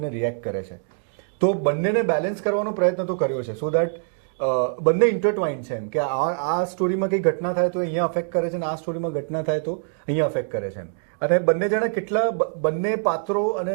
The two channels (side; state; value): left; silent; digital silence